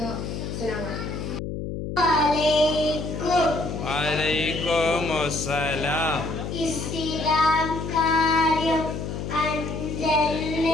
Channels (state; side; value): noise; left; hum, 5 dB below the sound